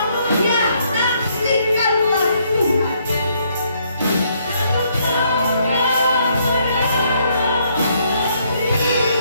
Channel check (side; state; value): both; inverted; correlation -0.70